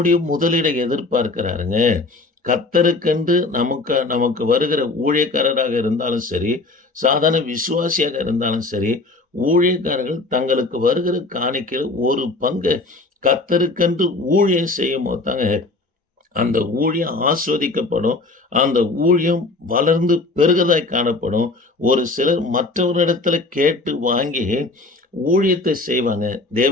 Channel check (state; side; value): quieter; right; 3.3 dB